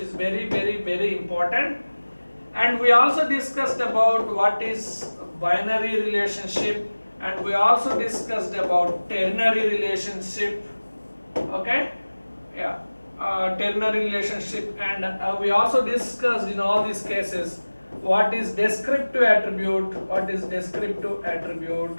very important. And we also discussed about what is binary relationship, and we also discussed about ternary relationship. Okay, yeah, ternary relationship, and we also discussed in all these cases what is descriptive attribute, what is descriptive attribute.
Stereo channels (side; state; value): both; inverted; correlation -1.00